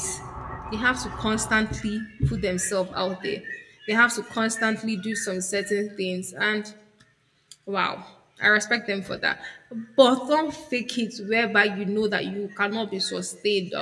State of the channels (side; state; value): both; identical; correlation 1.00